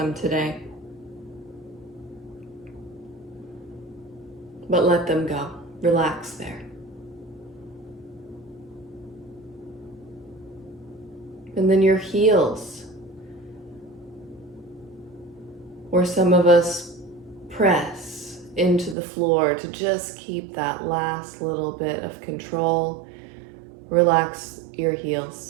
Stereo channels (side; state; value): left; drops out; at 18.9 s